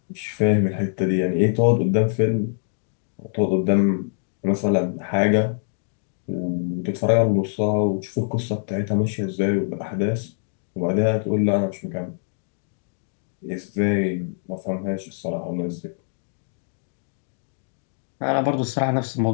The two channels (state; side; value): silent; right; 63 dB below the other